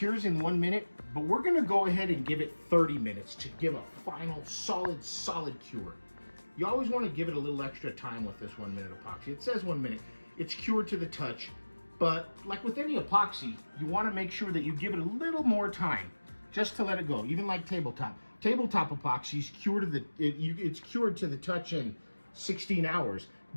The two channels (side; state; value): both; inverted; correlation -1.00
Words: in 1 minute, but we're gonna go ahead and give it 30 minutes to give a final solid cure. You always wanna give it a little extra time with this 1 minute epoxy. It says 1 minute, it's cured to the touch, but like with any epoxy, you wanna make sure that you give it a little more time just to let it go, even like tabletop. Tabletop epoxy is cured to it's cured to the touch in 16 hours,